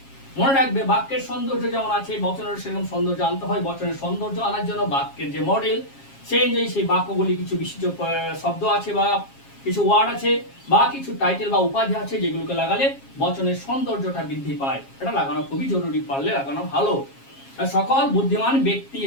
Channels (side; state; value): right; late; 7.4 ms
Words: মনে রাখবে, বাক্যের সৌন্দর্য যেমন আছে, বচনের সেরকম সৌন্দর্য আনতে হয়। বচনের সৌন্দর্য আনার জন্য বাক্যের যে মডেল, সেই অনুযায়ী সেই বাক্যগুলি কিছু বিশিষ্ট শব্দ আছে বা কিছু ওয়ার্ড আছে বা কিছু টাইটেল বা উপাধি আছে, যেগুলোকে লাগালে বচনের সৌন্দর্যটা বৃদ্ধি পায়। এটা লাগানো খুবই জরুরি, পারলে লাগানো ভালো। সকল বুদ্ধিমান ব্যক্তি